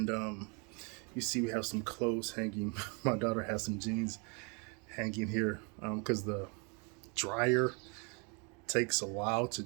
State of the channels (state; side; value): quieter; left; 34.3 dB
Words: you see we have some clothes hanging. My daughter has some jeans hanging here because the dryer takes a while to